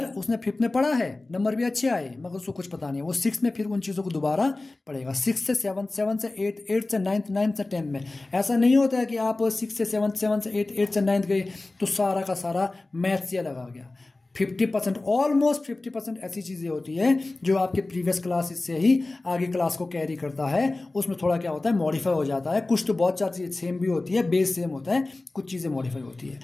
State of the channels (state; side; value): quieter; right; 3.1 dB